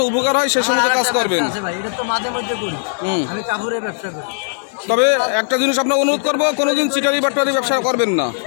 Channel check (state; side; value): silent; right; digital silence